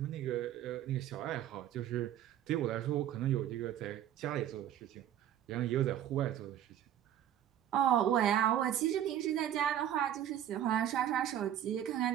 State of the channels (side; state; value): left; quieter; 11.0 dB